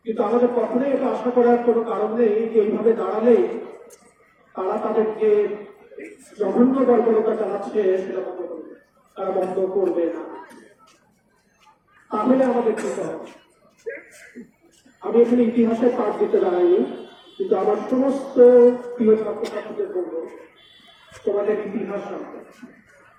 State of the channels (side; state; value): both; identical; correlation 1.00